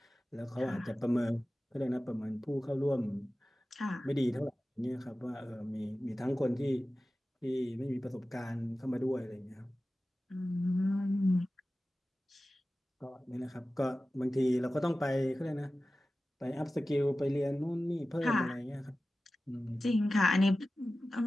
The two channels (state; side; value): normal; both; correlation 0.95